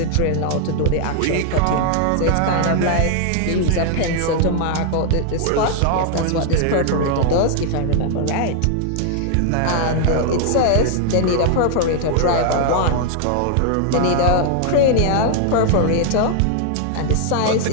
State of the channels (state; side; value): different; both; correlation 0.00